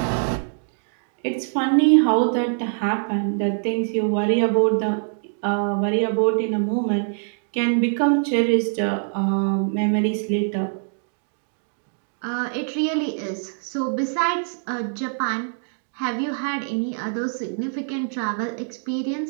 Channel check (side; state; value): left; silent; digital silence